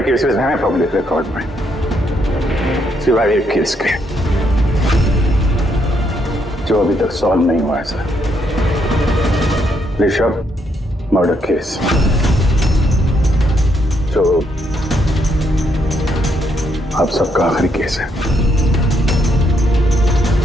केसेस हैं पब्लिक रिकॉर्ड में, सिवाय एक केस के जो अभी तक सॉल्व नहीं हुआ है सर। ऋषभ मर्डर केस, जो आप सबका आखिरी केस है।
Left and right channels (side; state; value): both; normal; correlation 0.75